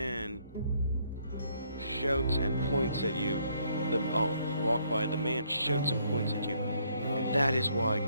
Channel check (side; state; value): both; inverted; correlation -0.69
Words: shouts and points at you. The man shouts and points at you. And that is why